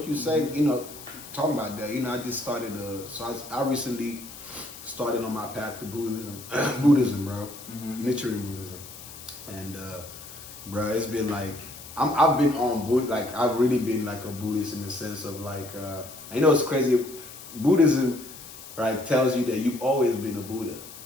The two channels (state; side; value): noise; left; hiss, 15 dB below the sound